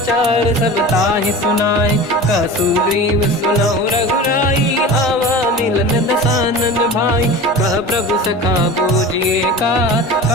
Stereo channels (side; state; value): both; normal; correlation 0.34